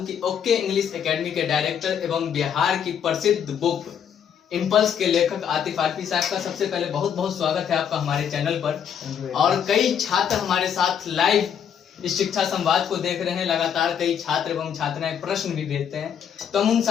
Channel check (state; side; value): quieter; right; 8.3 dB